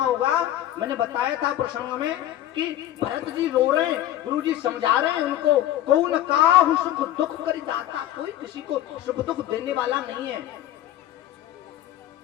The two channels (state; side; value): quieter; right; 12.9 dB